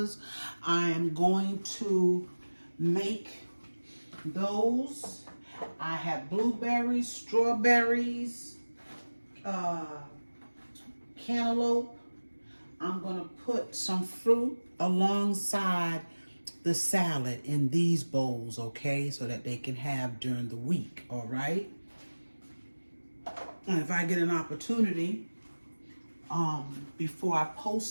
I am going to make those. I have blueberries, strawberries, cantaloupe. I'm going to put some fruit alongside the salad in these bowls, okay, so that they can have during the week, all right? And if I get an opportunity, before I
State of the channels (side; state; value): both; inverted; correlation -1.00